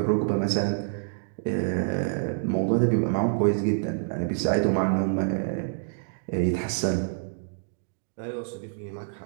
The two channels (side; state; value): left; silent; digital silence